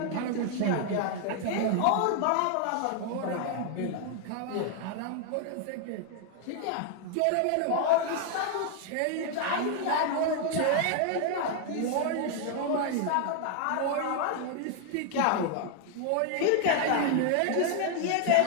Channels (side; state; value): both; different; correlation 0.00